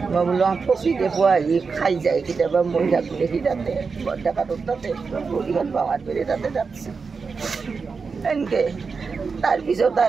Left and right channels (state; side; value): quieter; left; 5.0 dB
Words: মই বোলো ফচিতে পোৱা আহি খাই যায় কেতিয়াবা। মই থাকোঁ দেখি তাতে বৰডেকাটোৰ তাতে ভৰিখন পাৱাৰ পেৰে তাতে যাচ্ছে এনেকৈ। তাৰপিছত